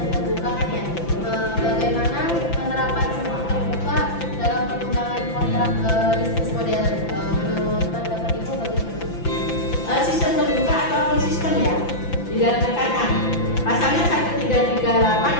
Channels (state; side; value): late; right; 5.9 ms